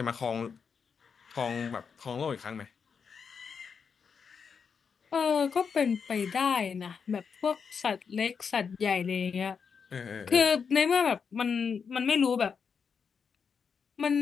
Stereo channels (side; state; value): right; quieter; 6.2 dB